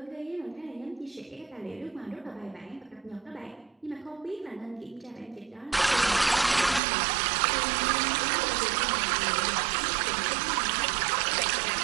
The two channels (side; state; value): left; drops out; at 6.8 s